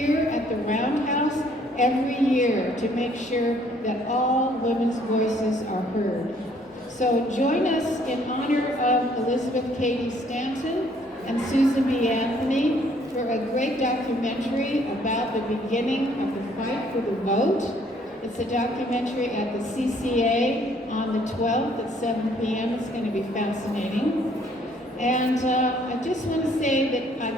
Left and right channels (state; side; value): normal; both; correlation 0.63